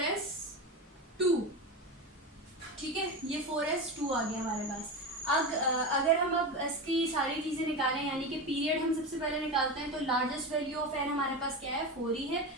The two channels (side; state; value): both; normal; correlation 0.21